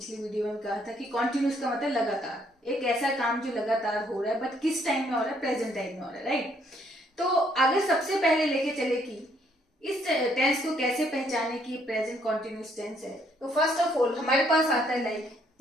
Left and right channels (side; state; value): both; normal; correlation 0.68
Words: वीडियो में कहा था कि कॉन्टिन्यूस का मतलब लगातार, एक ऐसा काम जो लगातार हो रहा है, बट किस टाइम में हो रहा है, प्रेजेंट टाइम में हो रहा है, राइट। तो अगर सबसे पहले लेके चले कि इस टेंस को कैसे पहचाने कि प्रेजेंट कॉन्टिन्यूस टेंस है, तो फर्स्ट ऑफ ऑल हमारे पास आता है like